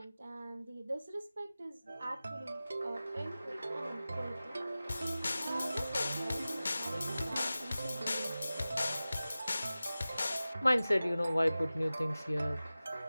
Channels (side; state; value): both; inverted; correlation -0.96